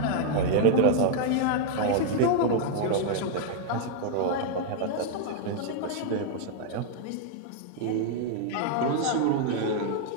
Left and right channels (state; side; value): different; both; correlation 0.00